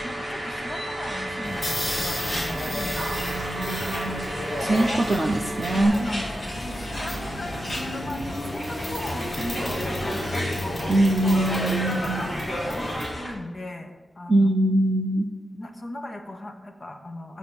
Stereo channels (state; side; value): normal; both; correlation 0.86